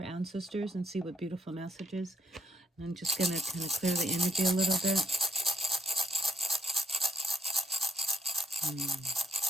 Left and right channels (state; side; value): normal; both; correlation 0.70